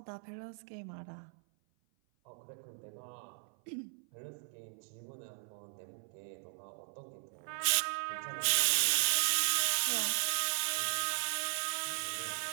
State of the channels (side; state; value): left; silent; 53 dB below the other